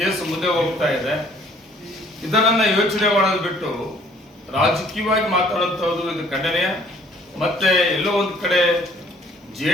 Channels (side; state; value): both; normal; correlation 0.58